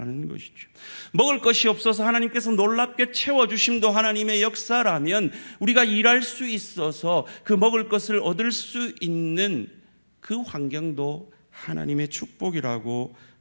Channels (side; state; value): both; inverted; correlation -1.00